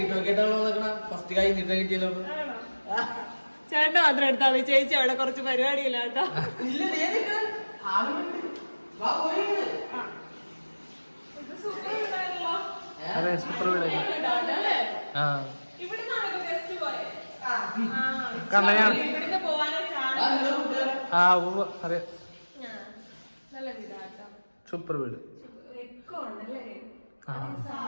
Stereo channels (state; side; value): inverted; both; correlation -1.00